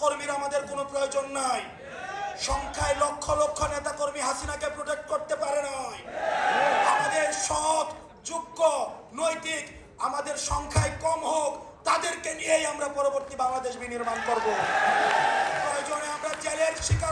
আমাদের কোনো প্রয়োজন নাই। সংখ্যায় লক্ষ লক্ষ নেতাকর্মী হাসিনাকে প্রোটেক্ট করতে পারে নাই। আমাদের সৎ, যোগ্য, নৈতিক আমাদের সংখ্যায় কম হোক, তাদেরকে নিয়েই আমরা পরবর্তী বাংলাদেশ বিনির্মাণ করব। প্রয়োজনে আমরা জেলের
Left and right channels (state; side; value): identical; both; correlation 1.00